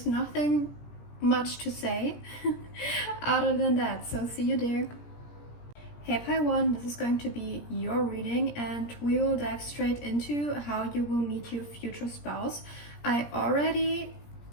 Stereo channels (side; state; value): right; late; 17 ms